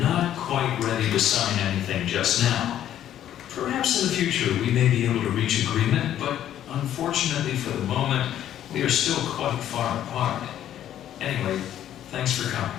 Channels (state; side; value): quieter; right; 11.3 dB